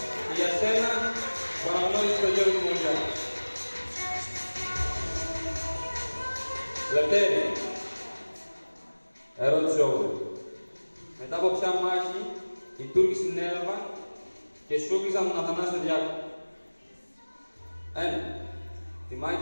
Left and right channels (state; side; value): inverted; both; correlation -1.00